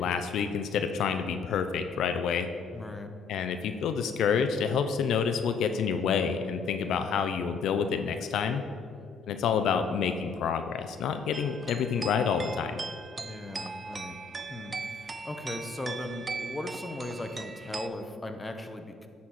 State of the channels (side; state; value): right; quieter; 5.3 dB